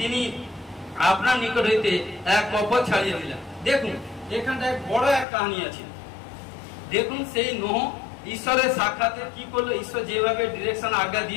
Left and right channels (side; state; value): right; drops out; at 5.2 s